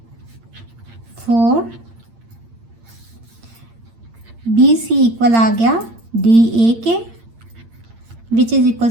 4 B C equal आ गया डी ए के which is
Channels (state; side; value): late; left; 8.7 ms